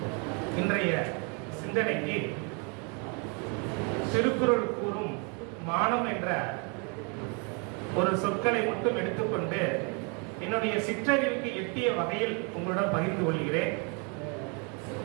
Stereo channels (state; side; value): quieter; left; 34.7 dB